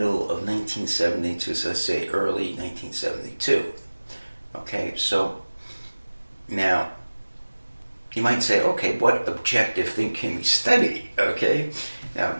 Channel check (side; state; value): both; inverted; correlation -1.00